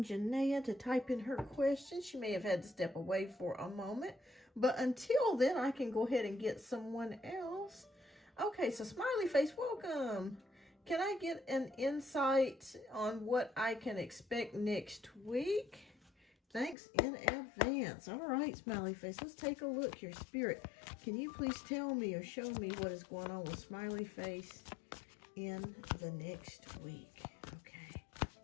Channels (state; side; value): drops out; right; at 16.8 s